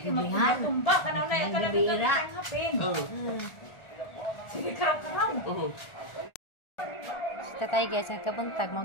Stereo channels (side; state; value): right; late; 1.4 ms